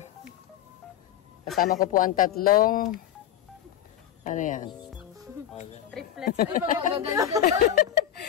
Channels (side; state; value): right; quieter; 10.9 dB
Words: Kasama ko po ang tatlong ano yan? Triplets. Ay, mga maganda.